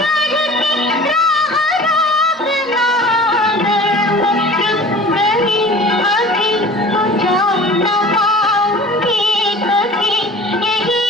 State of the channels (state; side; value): normal; both; correlation 0.42